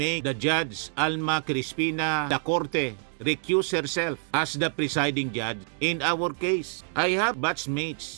the Judge Alma Crispina da Corte recuse herself as the presiding judge in our case. I have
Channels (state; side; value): silent; left; digital silence